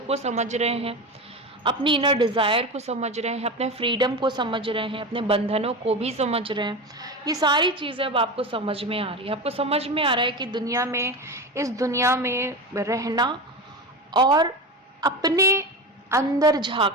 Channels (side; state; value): both; normal; correlation 0.23